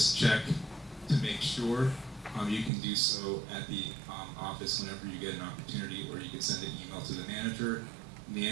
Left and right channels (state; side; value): drops out; left; at 2.7 s